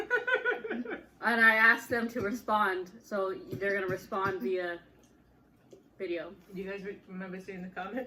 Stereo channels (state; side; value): identical; both; correlation 1.00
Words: and I asked them to respond, so they're gonna respond via video. Do you guys remember seeing the